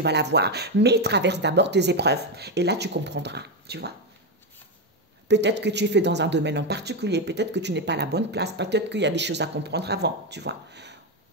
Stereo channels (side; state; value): both; normal; correlation 0.09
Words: l'avoir. Mais traverse d'abord tes épreuves. Et là, tu comprendras, tu vois. Peut-être que tu es fait dans un domaine en particulier. Peut-être que tu n'es pas à la bonne place. Peut-être qu'il y a des choses à comprendre avant, tu vois.